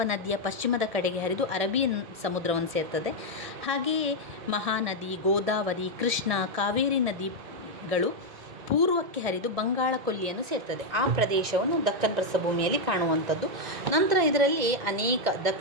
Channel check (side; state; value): left; late; 1.7 ms